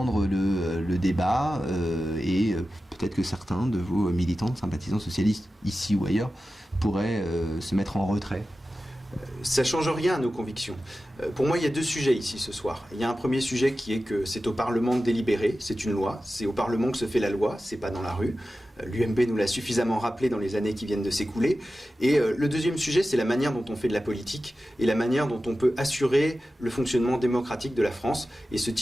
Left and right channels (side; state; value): both; normal; correlation 0.94